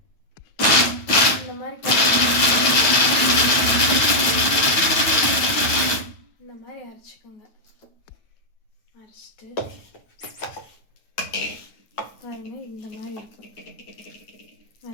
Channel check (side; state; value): right; late; 9.1 ms